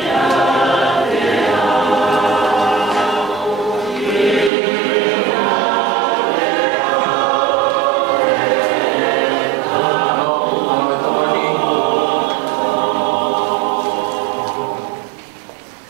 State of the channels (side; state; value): left; drops out; at 4.5 s